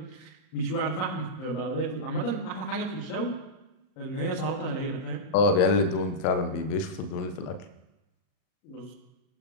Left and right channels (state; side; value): late; right; 39 ms